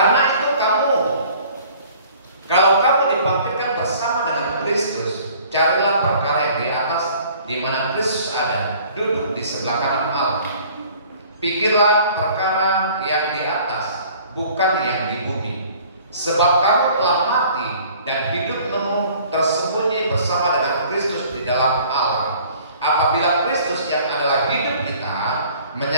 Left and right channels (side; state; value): both; inverted; correlation -0.52